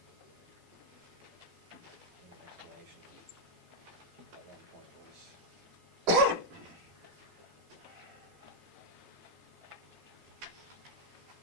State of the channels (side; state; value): both; normal; correlation -0.02